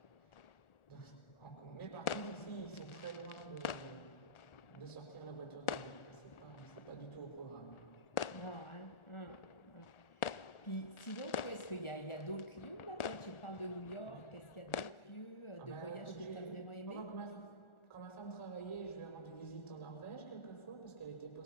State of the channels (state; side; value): late; right; 1.4 ms